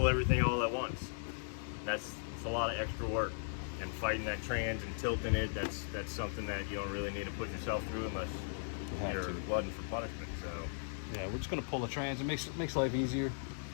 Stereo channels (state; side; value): silent; right; digital silence